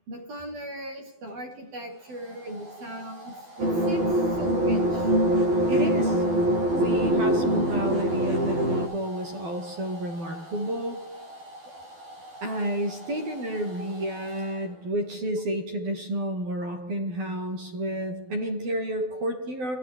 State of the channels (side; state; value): left; late; 12 ms